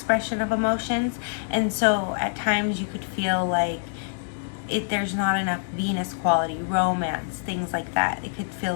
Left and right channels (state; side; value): silent; right; digital silence